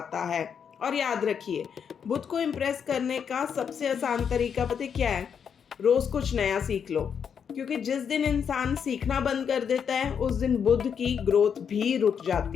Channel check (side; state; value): right; quieter; 7.3 dB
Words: है। और याद रखिए, बुध को इम्प्रेस करने का सबसे आसान तरीका पता क्या है? रोज कुछ नया सीख लो, क्योंकि जिस दिन इंसान सीखना बंद कर देता है उस दिन बुध की ग्रोथ भी रुक